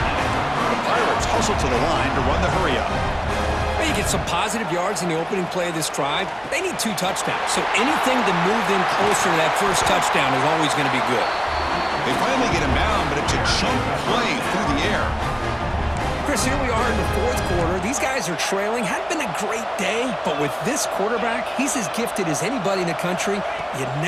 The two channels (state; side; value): identical; both; correlation 1.00